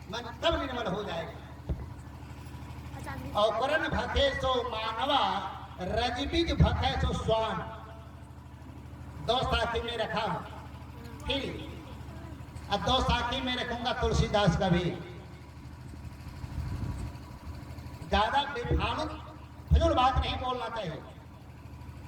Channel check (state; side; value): identical; both; correlation 1.00